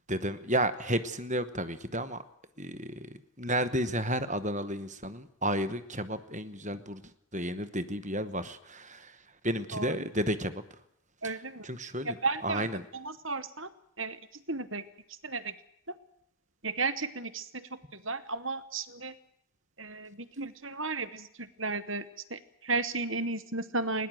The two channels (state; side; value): normal; both; correlation 0.02